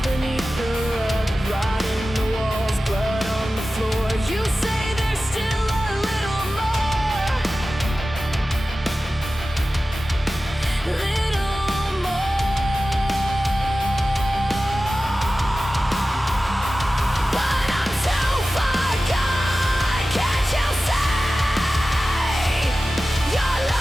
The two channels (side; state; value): both; normal; correlation 0.95